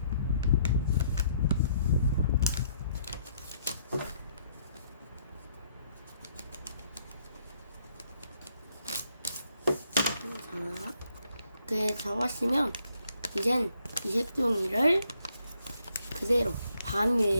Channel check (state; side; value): inverted; both; correlation -0.70